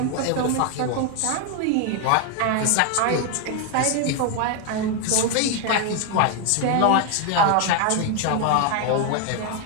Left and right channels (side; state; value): both; different; correlation 0.01